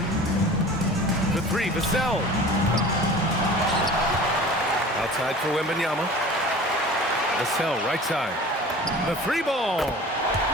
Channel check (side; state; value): both; normal; correlation 0.41